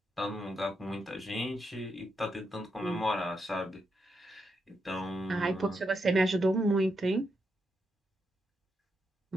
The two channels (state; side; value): normal; both; correlation 0.82